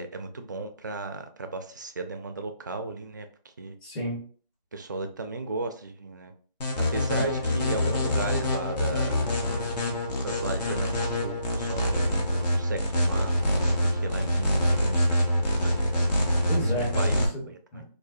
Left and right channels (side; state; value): both; inverted; correlation -0.77